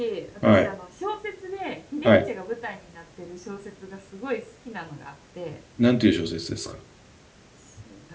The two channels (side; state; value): both; identical; correlation 1.00